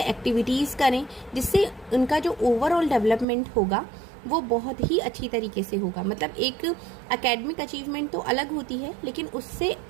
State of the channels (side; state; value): left; drops out; at 3.2 s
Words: एक्टिविटीज़ करें, जिससे उनका जो ओवरऑल डेवलपमेंट होगा वो बहुत ही अच्छी तरीके से होगा। मतलब एक एकेडमिक अचीवमेंट तो अलग होती है, लेकिन उससे